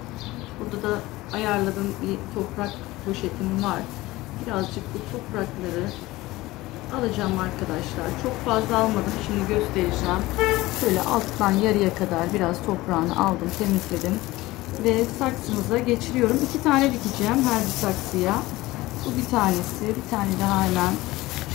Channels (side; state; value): right; quieter; 18.9 dB